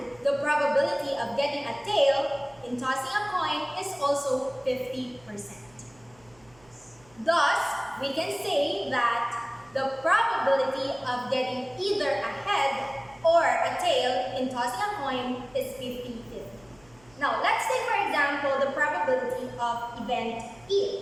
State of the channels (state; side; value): noise; right; hum, 28 dB below the sound